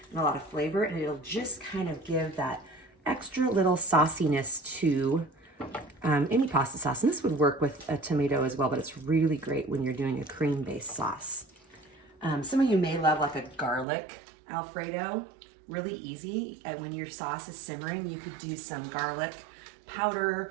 and a lot of flavor, and it'll just kind of give that extra little sauciness to any pasta sauce. And this would work with a tomato as well, but it's really great when you're doing a cream-based sauce. Some of you may love like a garlic Alfredo, really easy. And when your sauce is simmering, you could do some garlic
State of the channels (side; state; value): left; drops out; at 13.9 s